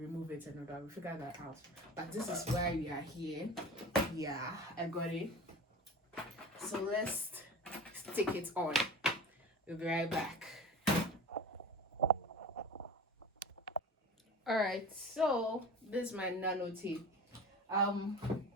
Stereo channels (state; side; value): normal; both; correlation 0.35